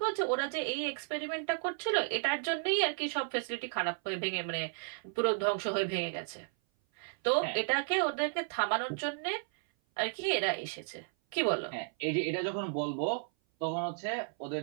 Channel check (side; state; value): left; silent; 55 dB below the other